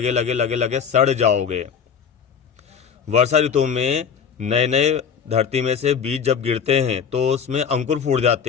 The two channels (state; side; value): quieter; right; 7.0 dB